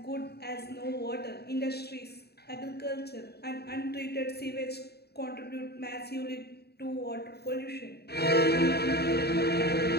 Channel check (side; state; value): right; late; 0.47 ms